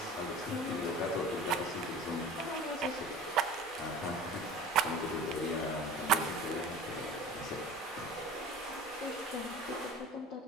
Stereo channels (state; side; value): normal; both; correlation 0.39